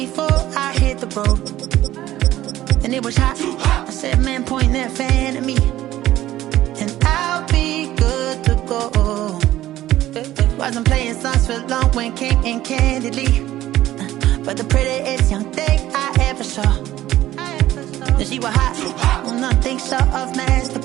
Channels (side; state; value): left; quieter; 14.3 dB